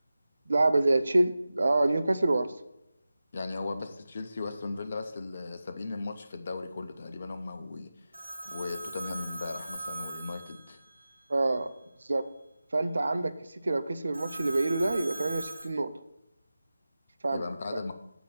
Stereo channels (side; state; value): both; inverted; correlation -0.94